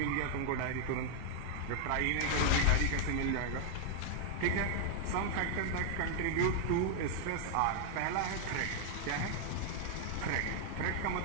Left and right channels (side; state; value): both; different; correlation 0.00